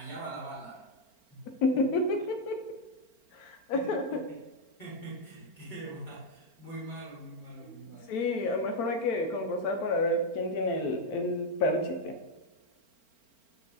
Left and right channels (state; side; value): late; right; 4.4 ms